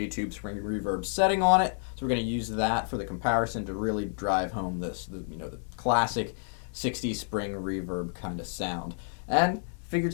Tube Spring Reverb setting on it, so we're going to use that for the comparison to really drive home the classic 60s Spring Reverb kind of sound. And figured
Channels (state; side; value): silent; right; 58 dB below the other